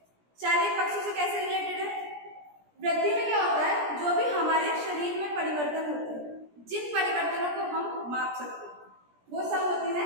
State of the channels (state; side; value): late; left; 17 ms